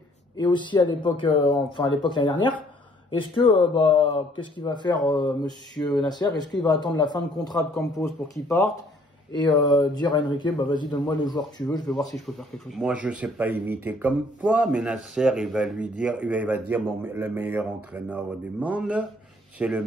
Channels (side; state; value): both; normal; correlation 0.61